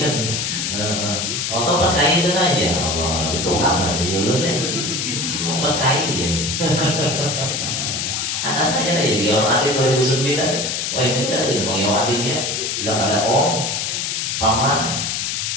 Kalau pakai itu aja, Allah itu kabar aja lu deh, mau pakai aja. Anak saya lagi orang adik 2009, wah ini tadi mau yang adiknya, bilang ada om, paman,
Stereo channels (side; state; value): left; noise; hiss, 1 dB below the sound